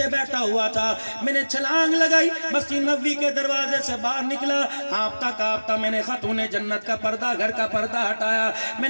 بیٹھا ہوا تھا، میں نے چھلانگ لگائی، مسجد نبوی کے دروازے سے باہر نکلا، ہانپتا کانپتا میں نے خاتون جنت کا پردہ، گھر کا پردہ ہٹایا. میں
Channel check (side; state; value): both; inverted; correlation -1.00